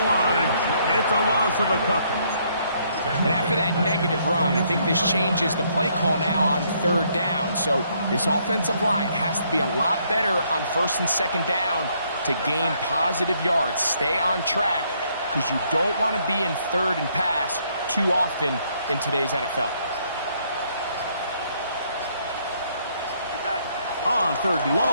line. It's a loss of a couple. And after that negative run, I think this changes the play call now on third down. So this offensive line has to be a lot better on first and second down to gain positive yards. Stay on track because you don't want to be in third and pass too often in today's NFL. On third and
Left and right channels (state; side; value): inverted; both; correlation -0.69